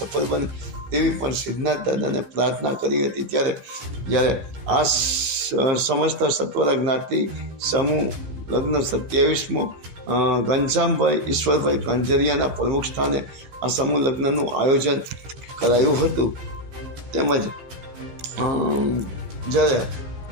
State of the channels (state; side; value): late; left; 15 ms